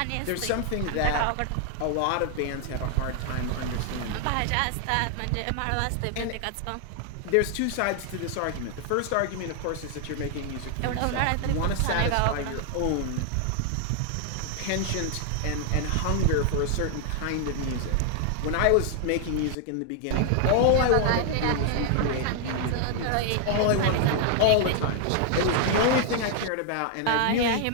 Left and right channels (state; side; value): different; both; correlation 0.00